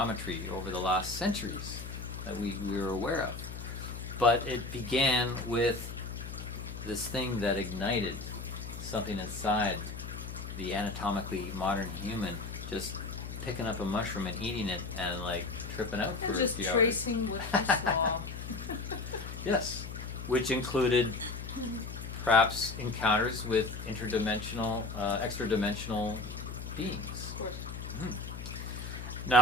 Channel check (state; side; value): noise; left; hum, 8 dB below the sound